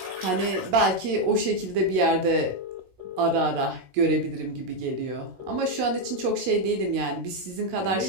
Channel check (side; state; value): left; late; 16 ms